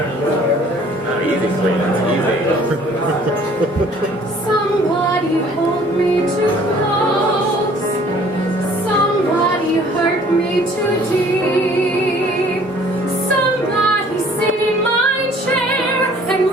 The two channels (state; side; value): normal; both; correlation 0.55